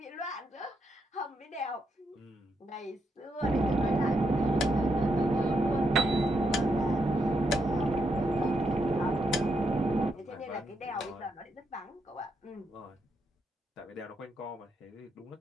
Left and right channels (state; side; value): normal; both; correlation 0.80